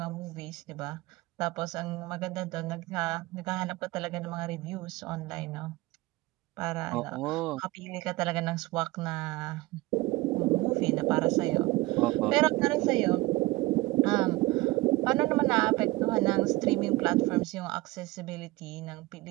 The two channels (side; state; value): left; quieter; 20.5 dB